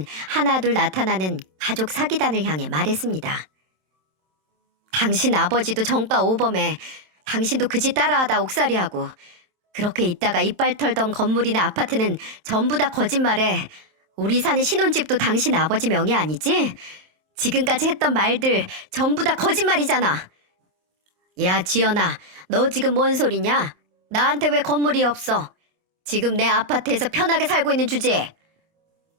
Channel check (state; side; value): late; left; 27 ms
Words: 하나둘 나타나는 가족 사기단을 향해 말했습니다. 당신 아버지도 정가 오범해. 당신도 그 짓 따라하다 옥살이하고 그렇게 있다가 이빨 털던 건물이나 아파트는 전부 다 거짓말해. 우리 사는 신혼집도 당신 아버지 명의 아니지? 지금까지 했던 말들 전부 다 거짓말이잖아. 야 지연아, 너 지금 뭔 소리냐? 나한테 왜 건물이 없어? 지금 내 아파트에서 편하게 살고 있는 주제에.